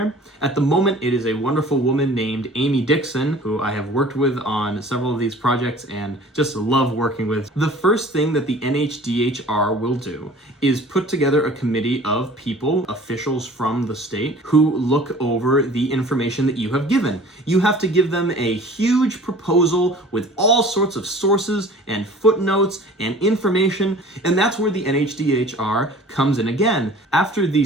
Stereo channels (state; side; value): normal; both; correlation 0.46